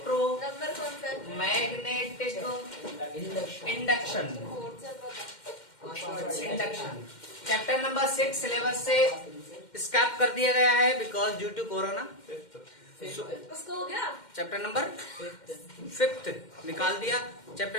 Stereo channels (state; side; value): late; right; 2.1 ms